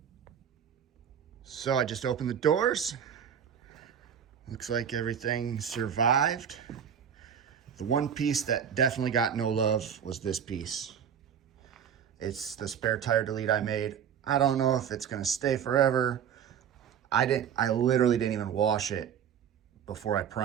So I just opened the doors. Looks like everything survived. The one piece that definitely got no love was this piece. It's the spare tire delete I made. I don't know if it's gonna stay forever. I literally didn't even wash it before I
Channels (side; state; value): left; quieter; 8.3 dB